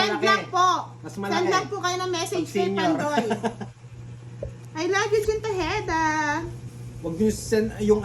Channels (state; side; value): identical; both; correlation 1.00